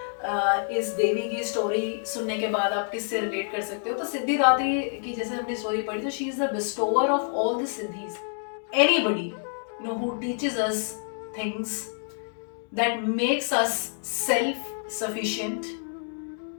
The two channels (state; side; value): silent; right; 57 dB below the other